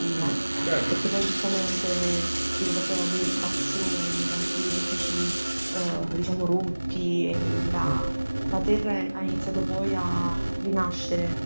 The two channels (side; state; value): both; inverted; correlation -1.00